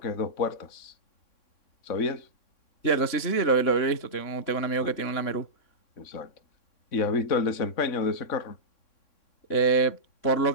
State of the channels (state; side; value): late; right; 3.6 ms